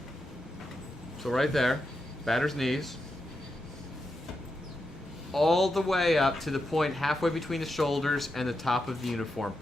So right there, batter's knees, all the way up to the point halfway between the shoulders and the top of the uniform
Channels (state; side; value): normal; both; correlation 0.86